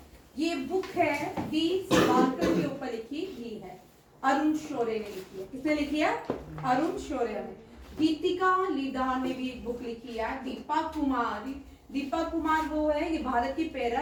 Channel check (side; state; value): both; identical; correlation 1.00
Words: ये बुक है डी सावरकर के ऊपर लिखी ही है, अरुण शौर्य ने लिखी है। किसने लिखी है? अरुण शौर्य ने। गीतिका लीदार ने भी एक बुक लिखी है। दीपक कुमार वो है, ये भारत की